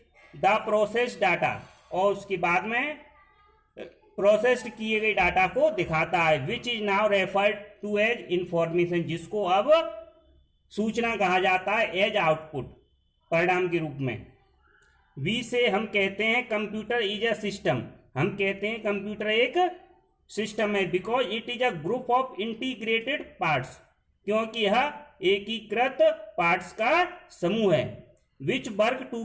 the process data, और उसके बाद में प्रोसेस्ड किए गए डाटा को दिखाता है। Which is now referred to as information, जिसको अब सूचना कहा जाता है एज आउटपुट, परिणाम के रूप में। वी से हम कहते हैं कंप्यूटर इज अ सिस्टम, हम कहते हैं कंप्यूटर एक सिस्टम है, because it is a group of integrated parts, क्योंकि यह एकीकृत पार्ट्स का समूह है। Which work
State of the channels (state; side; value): identical; both; correlation 1.00